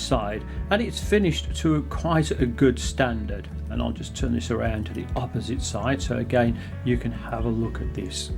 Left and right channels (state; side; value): identical; both; correlation 1.00